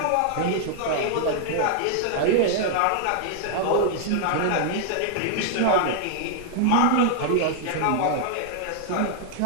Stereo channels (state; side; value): different; both; correlation -0.01